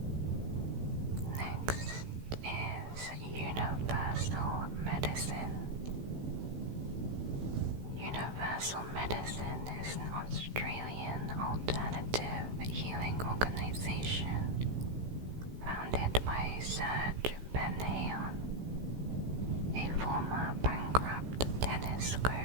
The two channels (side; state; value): left; late; 16 ms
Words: Next is universal medicine. Universal Medicine is an Australian alternative healing organization founded by Serge Ben-Hayon, a former bankrupt tennis